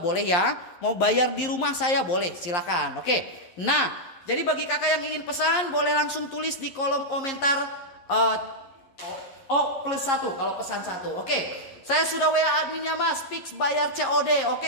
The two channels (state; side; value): late; right; 11 ms